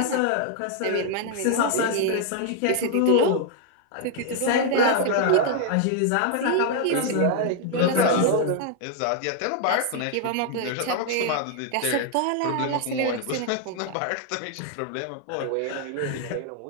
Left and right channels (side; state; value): both; different; correlation 0.00